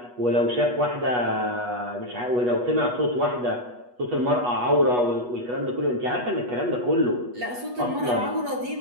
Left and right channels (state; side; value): late; left; 8.2 ms